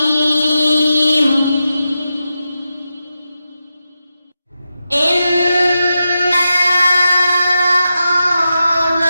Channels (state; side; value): inverted; both; correlation -0.89